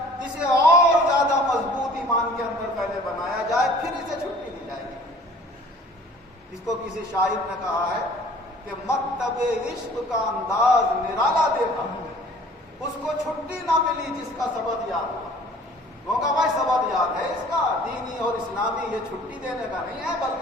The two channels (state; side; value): normal; both; correlation 0.50